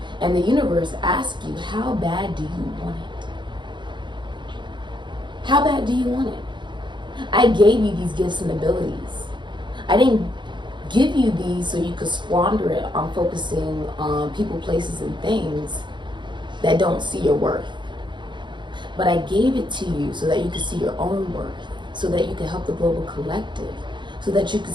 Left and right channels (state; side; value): late; left; 0.23 ms